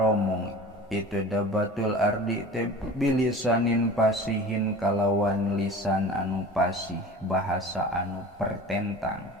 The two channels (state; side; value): normal; both; correlation 0.38